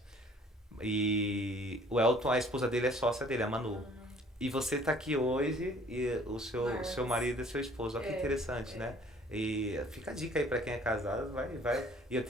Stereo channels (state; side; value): normal; both; correlation 0.55